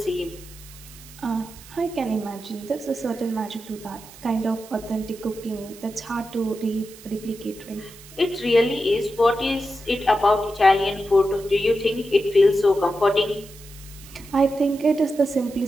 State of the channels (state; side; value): noise; right; hiss, 19 dB below the sound